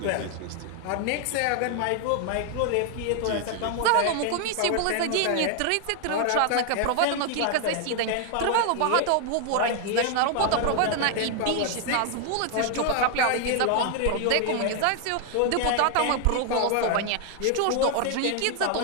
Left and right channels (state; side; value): different; both; correlation 0.00